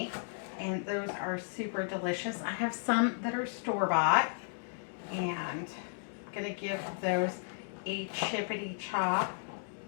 And those are super delicious. I have some that are store-bought. And I'm going to give those a chippity chop.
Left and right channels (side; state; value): right; silent; digital silence